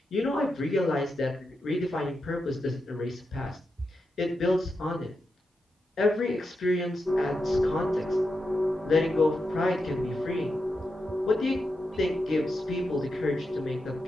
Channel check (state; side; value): normal; both; correlation 0.87